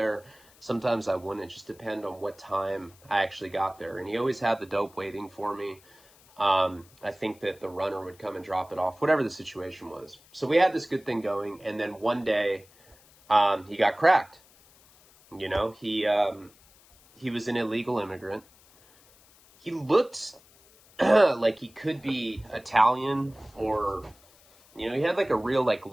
Sometimes I wouldn't. It just depended on what time I actually got there. And he always had the dope waiting for me. I think that the runner would come and drop it off, whatever the situation was. So we had this good thing going. And then one day, he got cracked. You know, he was an illegal immigrant. He looked like he could be Italian, or, you know, he had like a real like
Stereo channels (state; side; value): noise; left; hiss, 27 dB below the sound